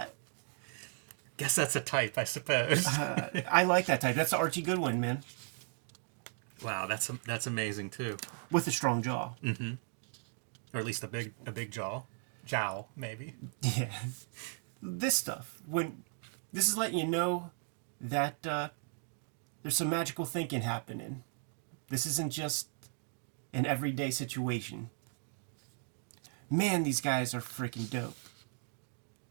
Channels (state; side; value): silent; left; 54 dB below the other